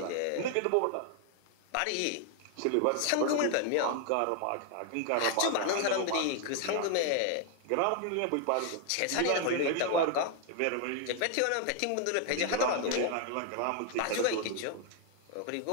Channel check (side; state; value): both; different; correlation 0.00